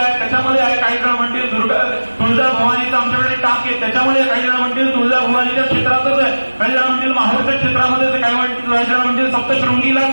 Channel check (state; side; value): inverted; both; correlation -1.00